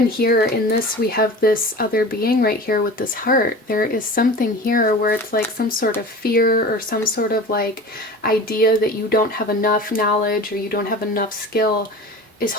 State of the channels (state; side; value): normal; both; correlation 0.36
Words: here in this, we have this other being right here with this heart. There is something here where it's like some sort of fear or some sort of like idea that you don't have enough knowledge or you don't have enough skill is